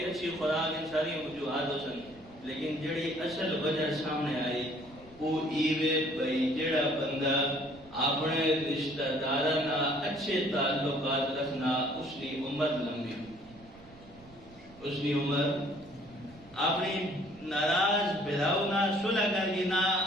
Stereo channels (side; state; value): right; noise; rumble, 24 dB below the sound